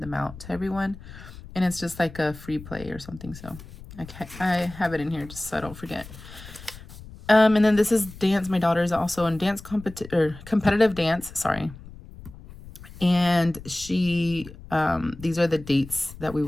out to everyone. And it's just like a free play or something. So I have it in here just so I don't forget. And then this is dance. My daughter is also in dance competitive dance. Sorry. And she, these are the dates that we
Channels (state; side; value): noise; left; rumble, 16 dB below the sound